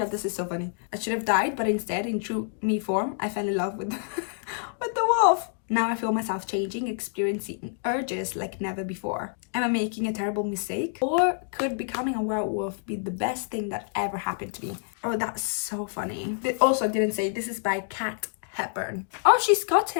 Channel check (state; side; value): silent; right; digital silence